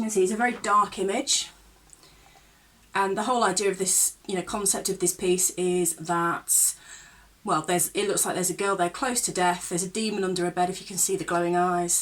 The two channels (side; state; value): both; identical; correlation 1.00